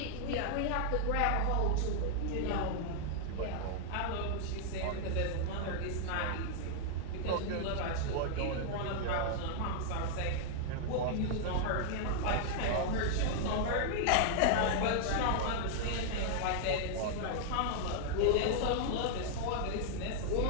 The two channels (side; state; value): both; different; correlation -0.01